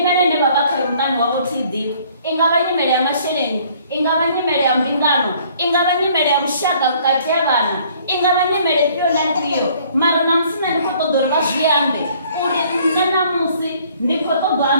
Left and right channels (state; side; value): inverted; both; correlation -0.59